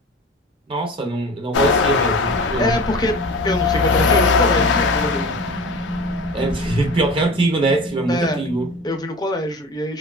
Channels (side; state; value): both; normal; correlation 0.36